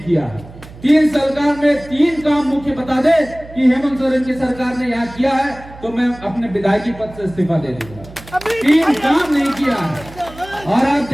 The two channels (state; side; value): noise; right; hum, 18 dB below the sound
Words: 3 सरकार में 3 काम मुख्य बता दे कि हेमंत सोरेन की सरकार ने यहाँ किया है, तो मैं अपने विधायकी पद से इस्तीफा दे दूंगा। 3 काम नहीं किया है। और